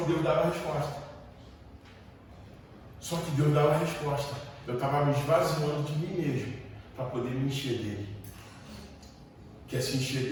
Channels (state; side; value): identical; both; correlation 1.00